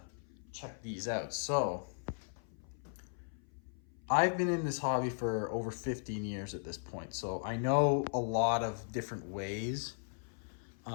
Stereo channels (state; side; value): silent; right; 53 dB below the other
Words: check these out. So I've been in this hobby for over 15 years at this point, so I know a lot of different ways.